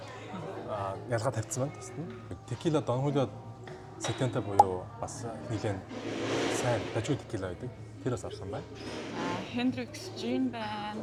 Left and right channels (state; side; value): identical; both; correlation 1.00